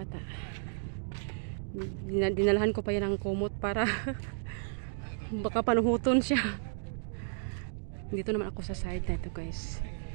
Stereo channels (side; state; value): left; silent; digital silence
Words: Dinalahan ko pa yan ng kumot para baka panuhuton siya. Dito naman ako sa side na ito guys.